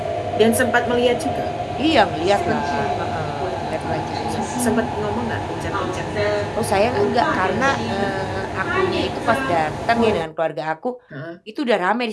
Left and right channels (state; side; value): identical; both; correlation 1.00